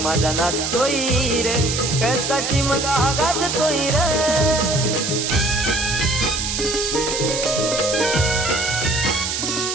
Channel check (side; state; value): right; noise; hiss, 2 dB below the sound